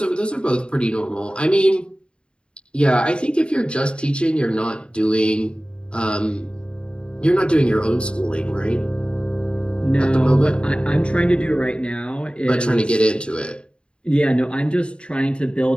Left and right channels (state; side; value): late; right; 0.054 ms